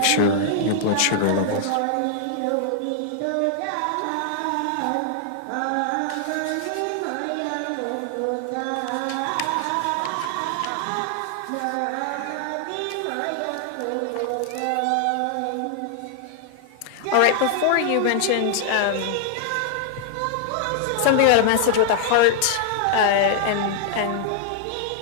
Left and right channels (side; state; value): both; different; correlation 0.00